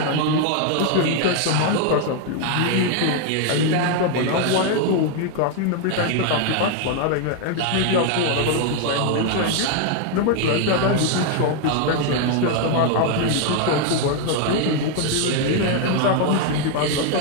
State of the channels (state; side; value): different; both; correlation 0.00